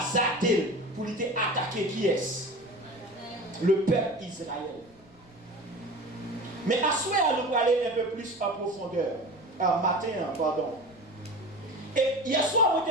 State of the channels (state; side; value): noise; left; rumble, 27 dB below the sound